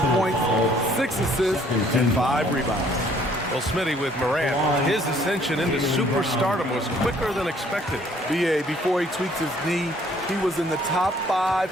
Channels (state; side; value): normal; both; correlation 0.61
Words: points, 6 assists, and 5 rebounds. Well, Smitty with Morant, his ascension into superstardom was quicker than expected. BA, before he tweaked his knee, he was in the top 5